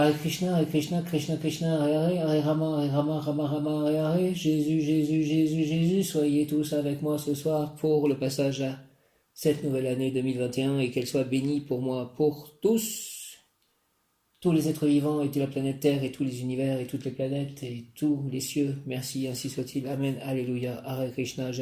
Krishna, Krishna, Krishna, Hare Hare, Hare Rama, Rama, Rama, Hare Hare, Jésus, Jésus, Jésus, Jésus, soyez tous avec moi ce soir pour le passage à cette nouvelle année 2021 et qu'elle soit bénie pour moi, pour tous les êtres vivants et toute la planète Terre et tous les univers et toutes les planètes et tous les cieux. Merci, ainsi soit-il. Amen, Alléluia, Hare Krishna,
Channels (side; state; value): both; identical; correlation 1.00